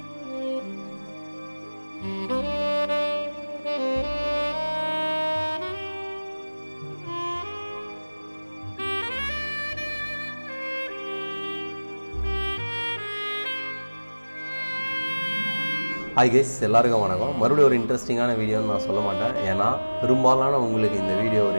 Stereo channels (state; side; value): inverted; both; correlation -1.00